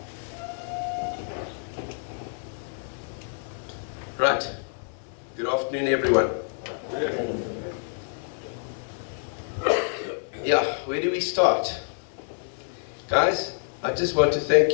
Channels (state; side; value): silent; right; digital silence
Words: Right. Good afternoon, everyone. Yeah, where do we start? Guys, I just want to